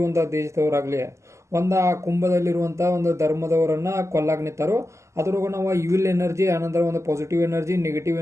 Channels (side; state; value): left; late; 0.14 ms